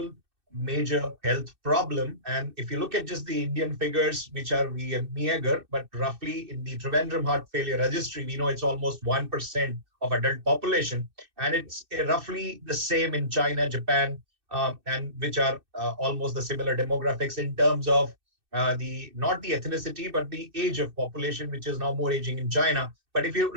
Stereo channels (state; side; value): late; left; 2.6 ms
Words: major health problem. And if you look at just the Indian figures, which are meager, but roughly in the Trivandrum Heart Failure Registry, we know it's almost 1% of adult population. And it's roughly the same in China, Japan, and which are almost the similar demographics in terms of not the ethnicity, but the age of population, which is now more aging in China. But if you